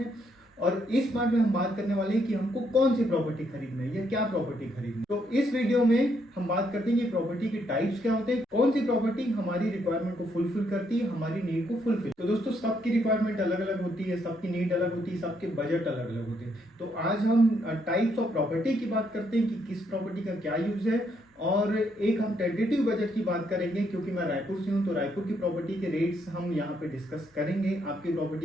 और इस पार्ट में हम बात करने वाले हैं कि हमको कौन सी प्रॉपर्टी खरीदना है या क्या प्रॉपर्टी खरीदनी है। तो इस वीडियो में हम बात करते हैं कि प्रॉपर्टी के टाइप्स क्या होते हैं, कौन सी प्रॉपर्टी हमारी रिक्वायरमेंट को फुलफिल करती है, हमारी नीड को फुलफिल। तो दोस्तों, सबकी रिक्वायरमेंट अलग अलग होती है, सबकी नीड अलग होती है, सबके बजट अलग अलग होते हैं। तो आज हम टाइप्स ऑफ प्रॉपर्टी की बात करते हैं कि किस प्रॉपर्टी का क्या यूज है, और एक हम टेंटेटिव बजट की बात करेंगे क्योंकि मैं रायपुर से हूं, तो रायपुर की प्रॉपर्टी के रेट्स हम यहाँ पे डिस्कस करेंगे। आपकी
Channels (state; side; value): normal; both; correlation 0.74